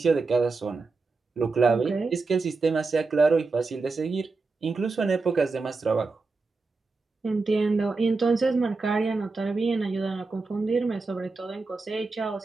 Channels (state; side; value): quieter; left; 3.9 dB